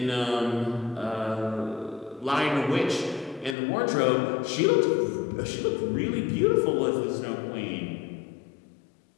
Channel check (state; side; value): drops out; right; at 3.6 s